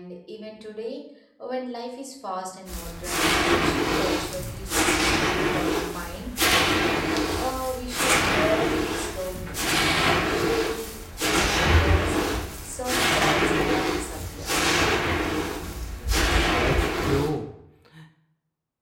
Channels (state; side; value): identical; both; correlation 1.00